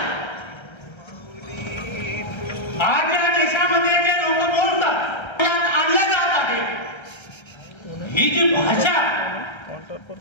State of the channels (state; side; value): late; right; 1.3 ms